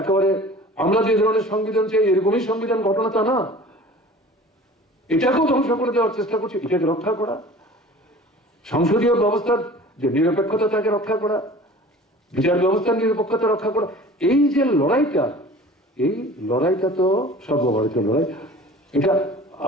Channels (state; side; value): normal; both; correlation 0.43